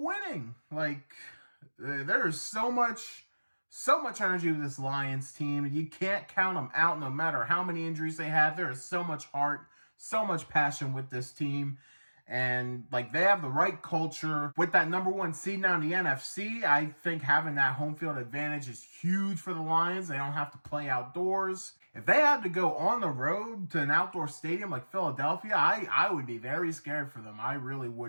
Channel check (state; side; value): inverted; both; correlation -1.00